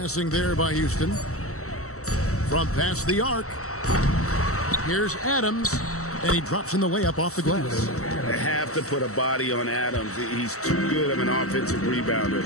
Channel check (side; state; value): right; late; 0.64 ms